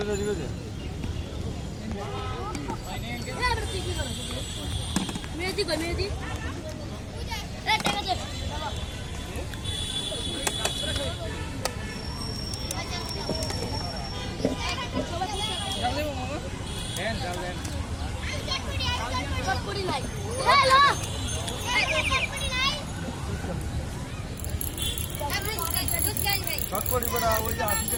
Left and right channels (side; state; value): both; identical; correlation 1.00